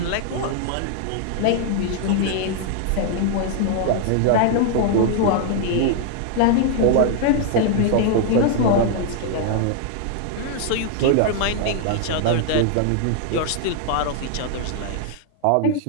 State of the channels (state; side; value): different; both; correlation -0.01